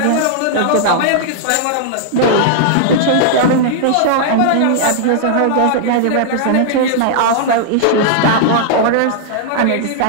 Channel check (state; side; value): different; both; correlation -0.01